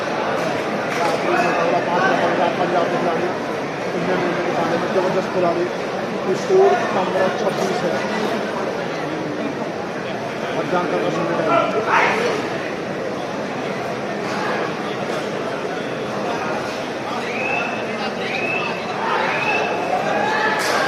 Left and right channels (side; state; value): both; identical; correlation 1.00